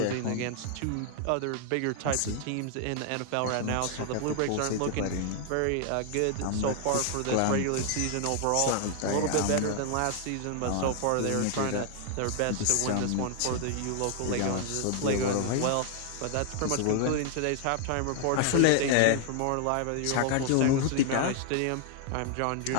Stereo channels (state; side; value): different; both; correlation 0.00